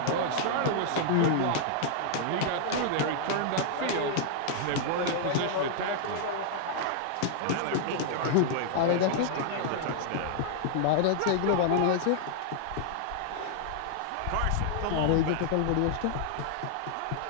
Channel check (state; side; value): different; both; correlation -0.01